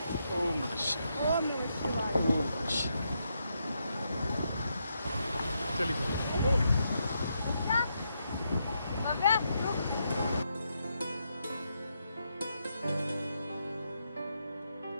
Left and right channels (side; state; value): both; inverted; correlation -0.81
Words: ओम नमः शिवाय। ओम नमः शिवाय। चलिए भव्या, रुक।